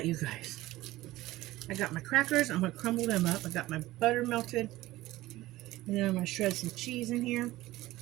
you guys. I got my crackers. I'm gonna crumble them up. I got my butter melted, and then I'm gonna shred some cheese in here.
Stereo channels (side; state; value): left; quieter; 17.3 dB